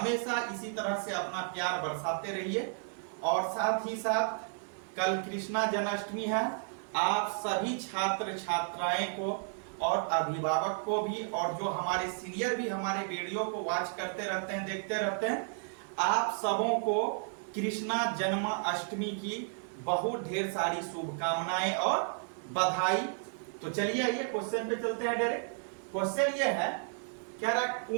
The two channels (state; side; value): silent; left; 56 dB below the other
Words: इसी तरह से अपना प्यार बरसाते रहिए। और साथ ही साथ कल कृष्णा जन्माष्टमी है। आप सभी छात्र छात्राएं को और अभिभावक को भी, और जो हमारे सीनियर भी हमारे वीडियो को वॉच करते रहते हैं, देखते रहते हैं, आप सबों को कृष्णा जन्माष्टमी की बहुत ढेर सारी शुभकामनाएं और बधाई। तो चलिए आइए क्वेश्चन पे चलते हैं डायरेक्ट। क्वेश्चन ये है, कह रहा